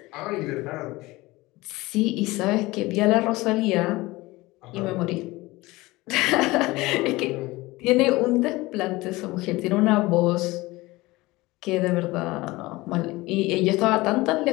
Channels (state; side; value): quieter; right; 20.6 dB